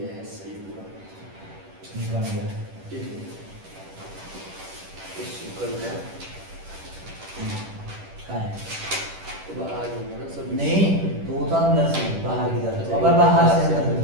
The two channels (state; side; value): late; left; 10 ms